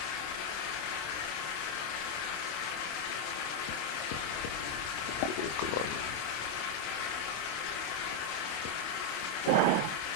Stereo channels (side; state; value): right; late; 27 ms